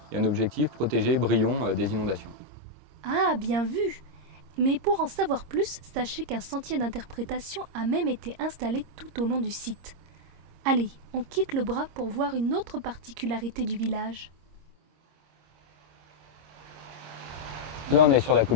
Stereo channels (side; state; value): left; late; 26 ms